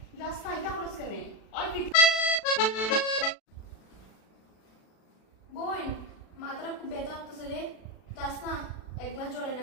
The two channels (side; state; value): right; late; 36 ms